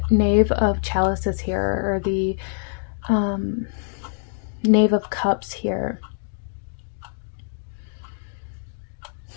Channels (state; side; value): silent; right; digital silence